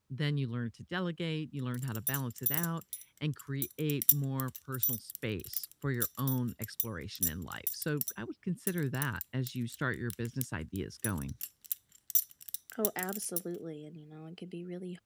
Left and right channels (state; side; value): identical; both; correlation 1.00